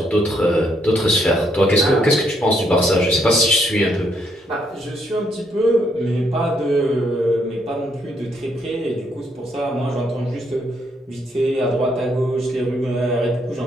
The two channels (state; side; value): normal; both; correlation 0.73